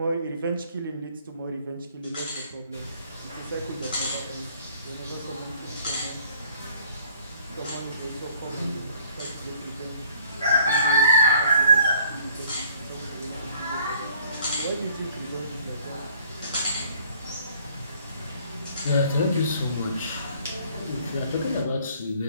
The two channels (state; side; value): inverted; both; correlation -0.58